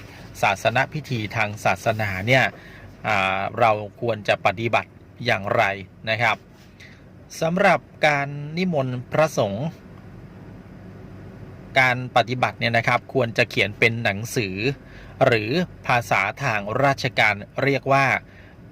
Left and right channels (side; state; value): both; identical; correlation 1.00